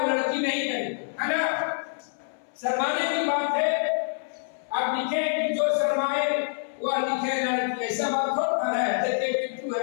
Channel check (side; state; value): right; silent; 61 dB below the other